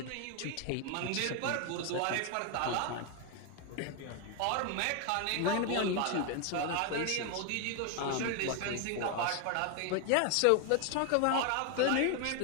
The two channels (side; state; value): both; different; correlation 0.01